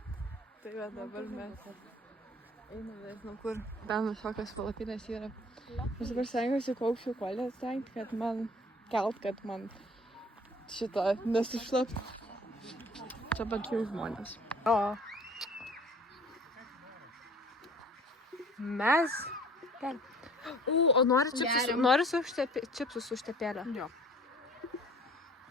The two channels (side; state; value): both; normal; correlation 0.51